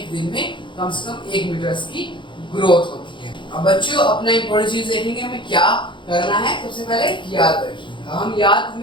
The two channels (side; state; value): right; late; 0.23 ms